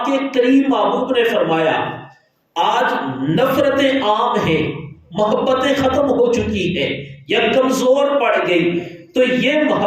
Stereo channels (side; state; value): both; identical; correlation 1.00